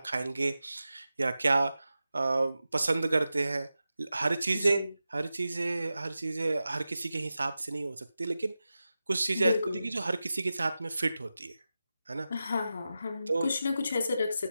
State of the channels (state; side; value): inverted; both; correlation -0.92